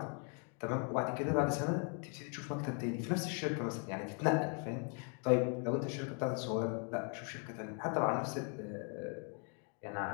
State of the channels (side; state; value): right; quieter; 38.8 dB